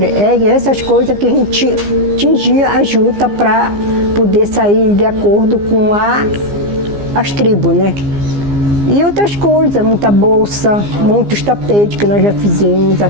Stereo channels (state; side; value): late; left; 15 ms